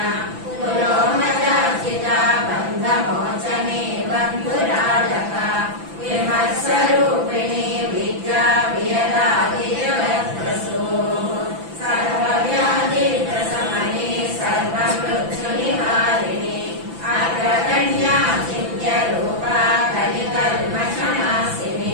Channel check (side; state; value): left; late; 5.9 ms